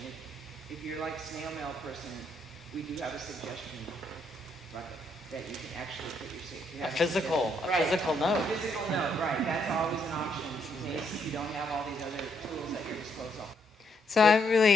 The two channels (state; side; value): normal; both; correlation 0.74